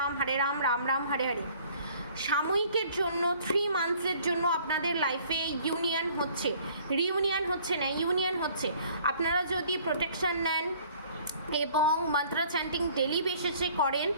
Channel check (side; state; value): both; inverted; correlation -0.55